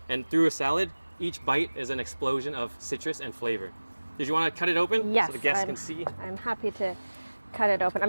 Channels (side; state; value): both; inverted; correlation -1.00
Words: And through a salad, each bite is an explosion of citrus and flavor. Did you want to cut it open? Yes, so the guests can see? I'm happy to cut it open.